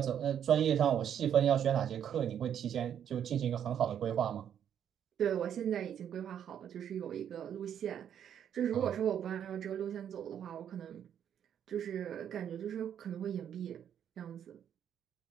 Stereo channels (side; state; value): left; quieter; 9.2 dB